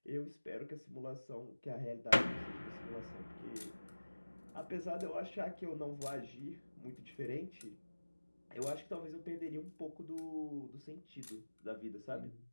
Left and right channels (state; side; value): inverted; both; correlation -1.00